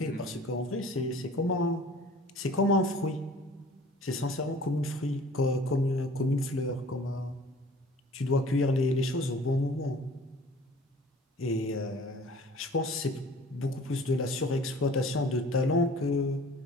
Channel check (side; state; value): both; normal; correlation 0.48